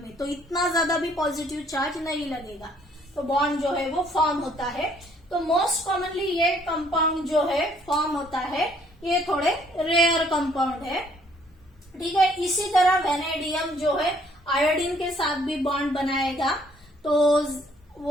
तो इतना ज्यादा भी पॉजिटिव चार्ज नहीं लगेगा, तो बॉन्ड जो है वो फॉर्म होता है। तो मोस्ट कॉमनली ये कंपाउंड जो है फॉर्म होता है, ये थोड़े रेयर कंपाउंड है। ठीक है, इसी तरह वैनेडियम जो है आयोडीन के साथ भी बॉन्ड बनाएगा, तो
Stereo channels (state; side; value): normal; both; correlation 0.63